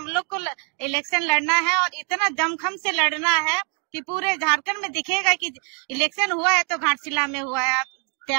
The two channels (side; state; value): left; quieter; 37.3 dB